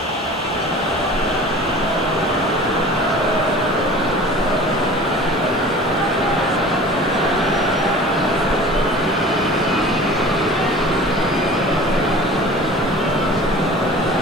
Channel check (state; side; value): noise; left; hiss, 28 dB below the sound